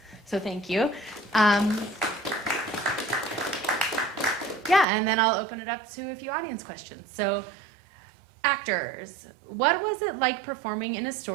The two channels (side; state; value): left; drops out; at 4.9 s